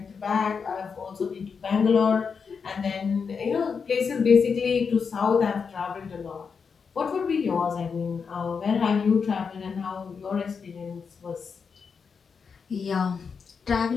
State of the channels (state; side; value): quieter; right; 5.8 dB